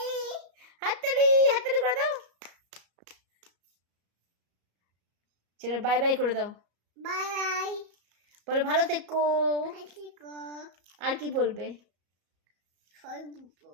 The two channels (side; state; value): left; late; 34 ms